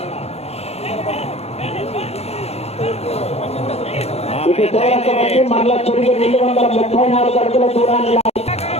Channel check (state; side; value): late; right; 0.30 ms